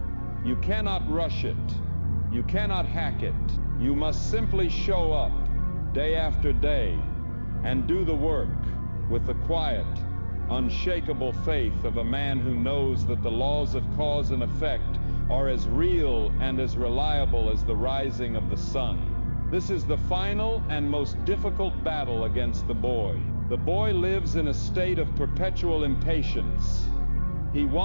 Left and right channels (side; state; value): both; inverted; correlation -1.00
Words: You cannot rush it. You cannot hack it. You must simply show up day after day and do the work with the quiet, unshakable faith of a man who knows that the laws of cause and effect are as real and as reliable as the rising of the sun. This is the final and most difficult battle against the boy. The boy lives in a state of perpetual impatience. He